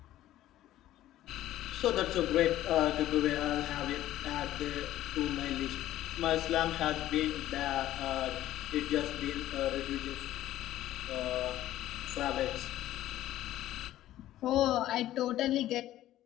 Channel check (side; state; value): right; quieter; 13.9 dB